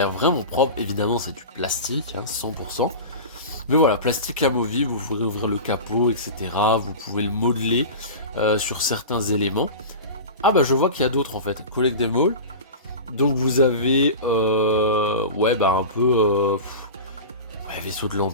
vraiment propre. Évidemment, c'est du plastique, hein, 100%. Mais voilà, plastique amovible, vous pouvez ouvrir le capot, etc. Vous pouvez le modeler sur certains éléments. Ah bah je vois qu'il y a d'autres en fait, Collect them all. Donc vous avez, un peu... vaisseau de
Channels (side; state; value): both; inverted; correlation -0.30